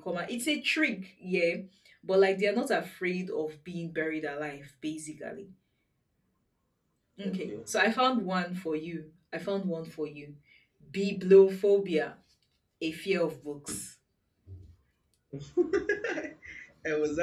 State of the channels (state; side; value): identical; both; correlation 1.00